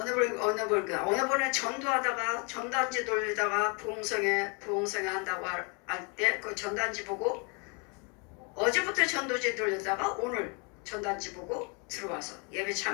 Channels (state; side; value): quieter; right; 34.0 dB